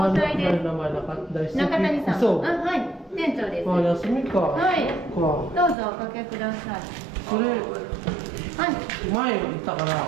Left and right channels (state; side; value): drops out; left; at 5.8 s